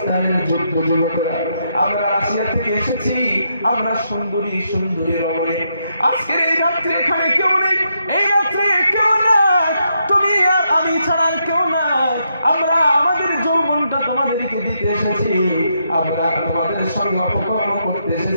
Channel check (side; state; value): both; inverted; correlation -0.79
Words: যুদ্ধ যুবকরা, আমরা রাশিয়া থেকে এসেছি, আমরা সুন্দরী সুন্দরী রমণী, আজকের এই রাত্রে এখানে কেউ নেই, এই রাত্রে কেউ নাই, তুমি আর আমি ছাড়া কেউ নাই, আমরা আমাদের যৌবনটা তোমাদেরকে দিতে এসেছি, আমরা তোমাদের সঙ্গে অপকর্ম করতে